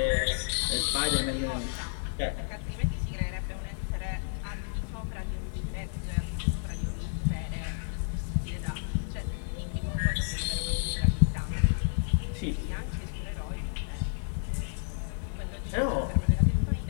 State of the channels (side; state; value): right; silent; 57 dB below the other